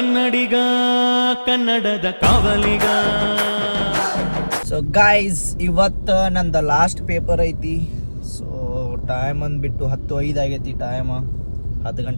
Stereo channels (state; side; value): inverted; both; correlation -1.00